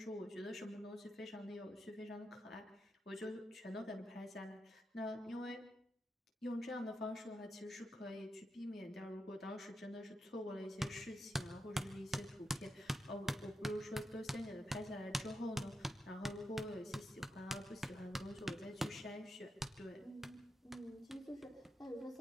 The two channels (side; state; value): both; normal; correlation 0.86